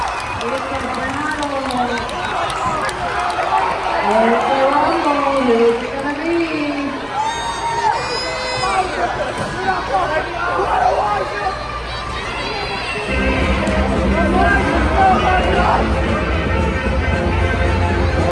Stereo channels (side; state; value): both; identical; correlation 1.00